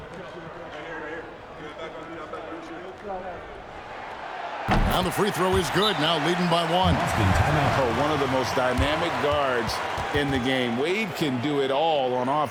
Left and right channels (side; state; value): both; identical; correlation 1.00